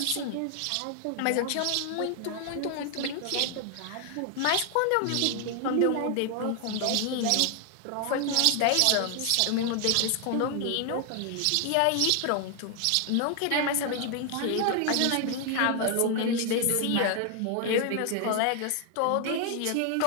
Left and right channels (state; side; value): different; both; correlation 0.00